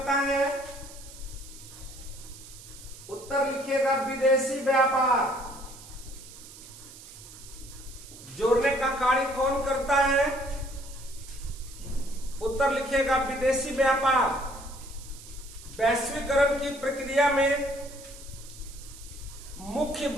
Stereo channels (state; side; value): noise; right; hiss, 17 dB below the sound